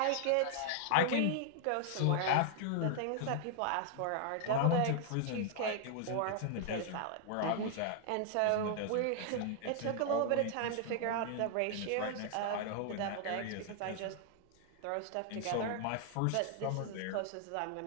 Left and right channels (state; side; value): different; both; correlation 0.00